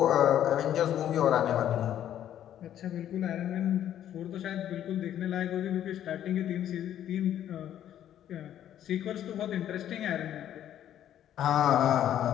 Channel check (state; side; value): quieter; right; 11.0 dB